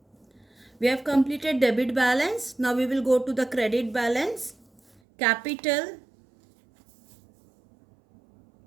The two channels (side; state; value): left; drops out; at 5.0 s